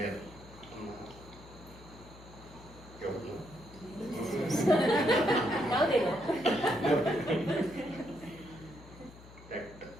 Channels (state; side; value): noise; left; hum, 19 dB below the sound